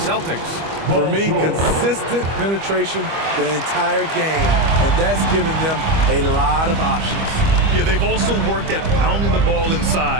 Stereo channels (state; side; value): late; left; 25 ms